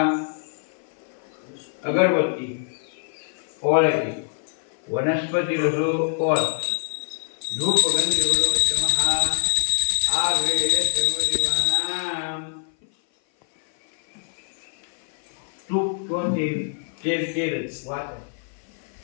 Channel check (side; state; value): right; silent; 57 dB below the other